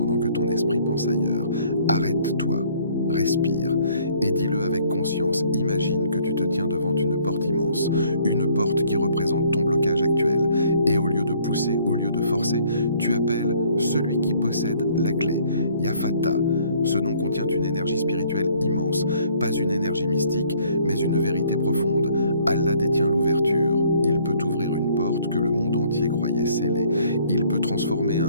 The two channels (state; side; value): inverted; both; correlation -0.61